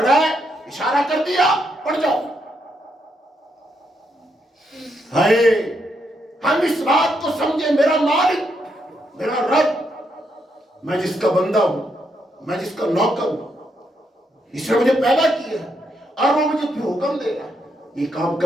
ہے, اشارہ کر دیا, پڑ جاؤ. ہائے, ہم اس بات کو سمجھے, میرا مالک, میرا رب, میں جس کا بندہ ہوں, میں جس کا نوکر ہوں, اس نے مجھے پیدا کیا ہے, اور وہ مجھے پھر حکم دے رہا ہے, یہ کام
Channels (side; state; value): both; normal; correlation 0.79